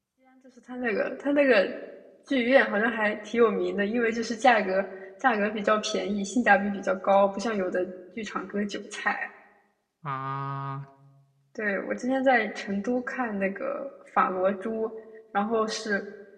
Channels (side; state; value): both; identical; correlation 1.00